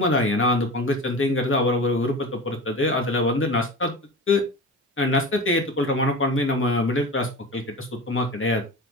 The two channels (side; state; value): both; normal; correlation 0.31